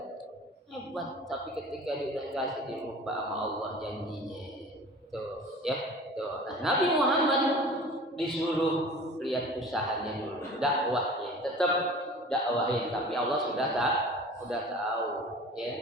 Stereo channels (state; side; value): normal; both; correlation 0.42